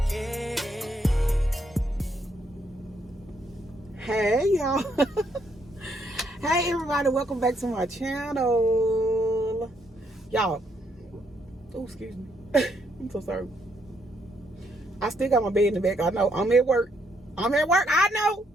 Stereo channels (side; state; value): both; normal; correlation 0.73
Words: it. Hey y'all. Hey everybody, welcome back to my channel. Y'all, oh excuse me. I'm so sorry. I still got my bed in the back. I know I'm at work. I know.